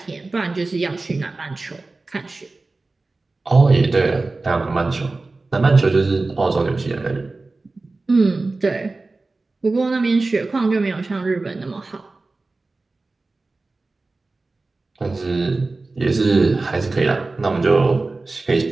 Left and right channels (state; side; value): quieter; left; 3.4 dB